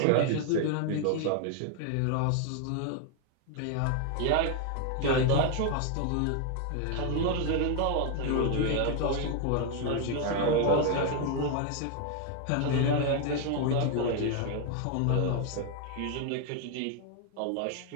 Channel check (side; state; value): both; different; correlation 0.00